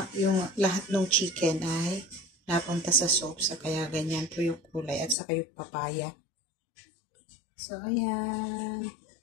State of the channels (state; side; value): drops out; right; at 5.2 s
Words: yung lahat ng chicken ay napunta sa soup. So, kaya ganyan po yung kulay. At saka yung papaya. So, ayan.